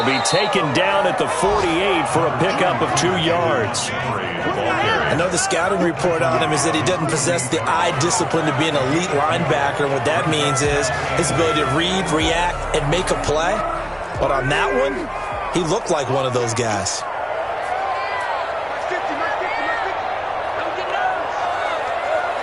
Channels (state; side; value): identical; both; correlation 1.00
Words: be taken down at the 48 for a pickup of 2 yards. I know the scouting report on him is that he doesn't possess the eye discipline to be an elite linebacker. And what that means is his ability to read, react, and make a play. But on that one, he looked like one of those guys.